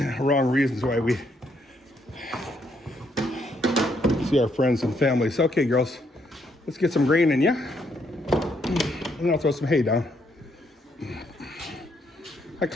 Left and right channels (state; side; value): normal; both; correlation 0.74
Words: Wrong reasons why we see our friends and families. Okay, girls, let's get some grain in, yeah? And I'll throw some hay down. I